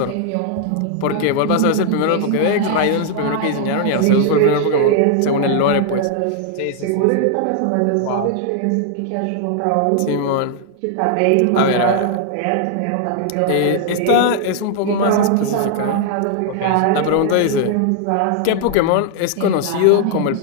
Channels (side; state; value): both; different; correlation -0.01